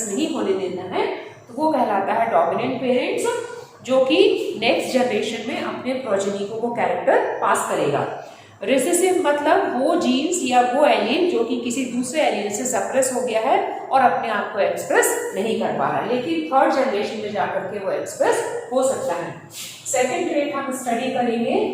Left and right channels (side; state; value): both; identical; correlation 1.00